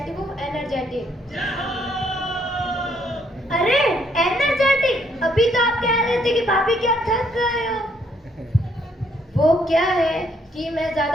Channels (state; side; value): normal; both; correlation 0.70